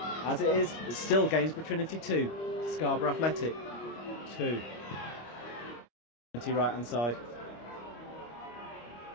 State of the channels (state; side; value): late; right; 25 ms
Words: As it is, it's still Gainsborough Trinity 2, Scarborough Athletic 2. Trinity right hand side.